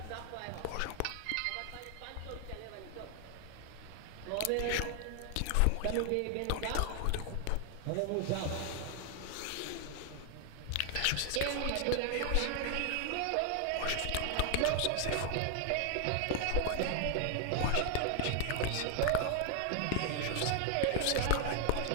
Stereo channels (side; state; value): both; different; correlation 0.00